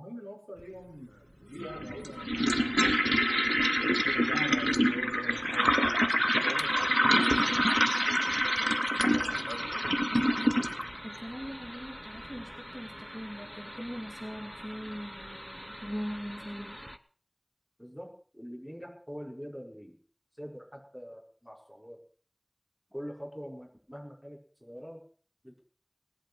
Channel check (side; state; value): both; identical; correlation 1.00